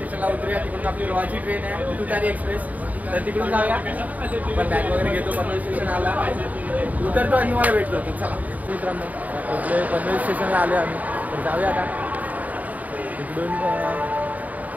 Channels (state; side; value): late; left; 0.074 ms